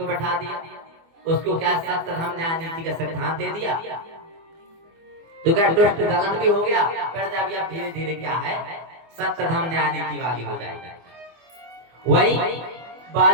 बैठा दिया, उसको क्या सत्य धर्म न्याय नीति का सिद्धांत दे दिया, तो क्या दुष्ट दलन भी हो गया, प्रजा भी अब धीरे धीरे क्या है, सत्य धर्म न्याय नीति वाली हो जाएगी। वही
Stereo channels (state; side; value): late; left; 24 ms